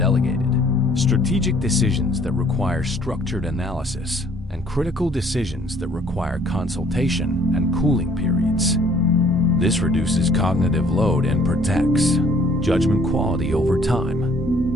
Strategic decisions that require structured analysis. And critical decisions that require consultation and cooling periods. This reduces cognitive load and protects judgment quality over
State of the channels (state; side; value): normal; both; correlation 0.59